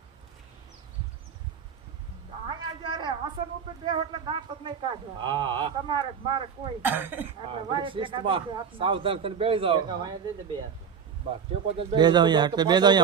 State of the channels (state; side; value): quieter; left; 7.0 dB